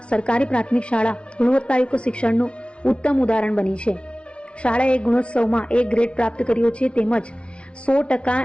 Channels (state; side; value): late; right; 0.059 ms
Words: સરકારી પ્રાથમિક શાળા ગુણવત્તાયુક્ત શિક્ષણનું ઉત્તમ ઉદાહરણ બની છે. શાળાએ ગુણોત્સવમાં એ ગ્રેડ પ્રાપ્ત કર્યો છે તેમજ